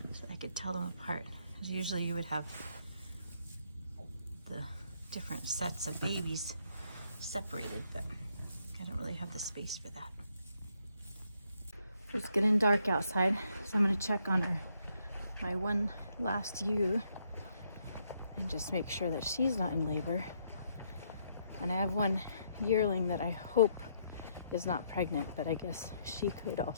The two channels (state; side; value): inverted; both; correlation -0.73